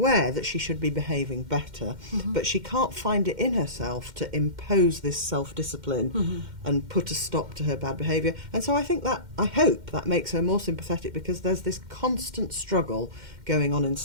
that she should be behaving better, but she can't find it in herself to impose this self-discipline and put a stop to her bad behaviour. And so I hope that makes her more sympathetic because there's this constant struggle going on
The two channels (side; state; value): left; late; 2.1 ms